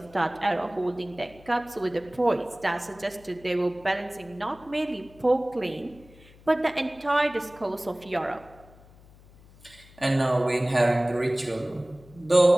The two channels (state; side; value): noise; left; hum, 24 dB below the sound